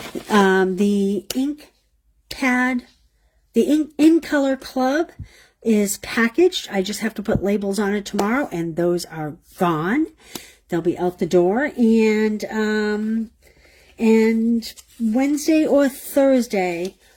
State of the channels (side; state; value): both; identical; correlation 1.00